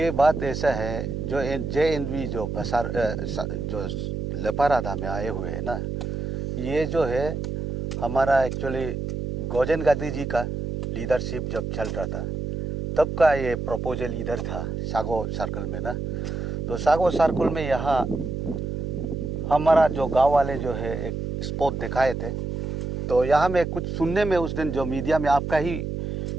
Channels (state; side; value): noise; right; hum, 4 dB below the sound